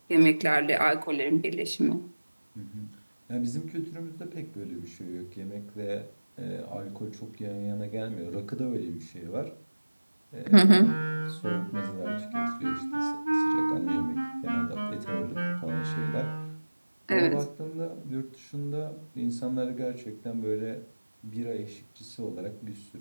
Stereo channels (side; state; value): both; inverted; correlation -1.00